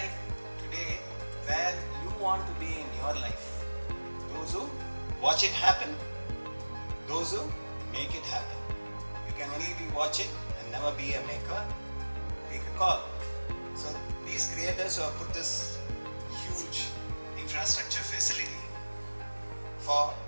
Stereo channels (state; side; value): inverted; both; correlation -1.00